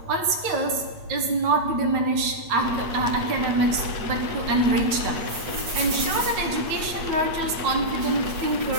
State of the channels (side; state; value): left; late; 8.6 ms